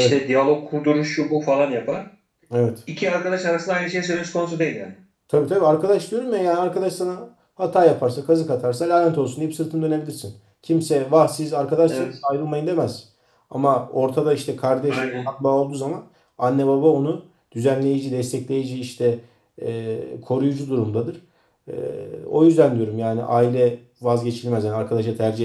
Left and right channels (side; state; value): both; identical; correlation 1.00